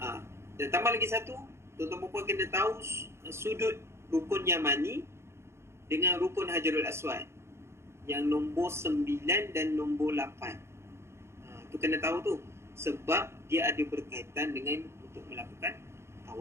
Dan tambah lagi satu, tuan-tuan dan puan kena tahu sudut rukun Yamani dengan rukun Hajarul Aswad yang nombor 9 dan nombor 8. Tu kena tahu tu, sebab dia ada berkaitan dengan untuk melakukan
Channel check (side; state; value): left; late; 0.13 ms